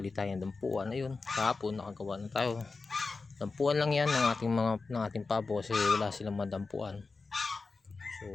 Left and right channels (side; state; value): right; quieter; 4.1 dB